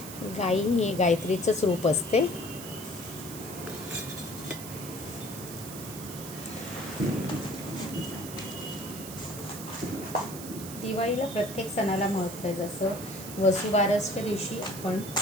गाई हे गायत्रीचंच रूप असते. दिवाळीला प्रत्येक सणाला महत्त्व आहे. जसं वसुबारसच्या दिवशी आपण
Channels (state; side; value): noise; right; hiss, 11 dB below the sound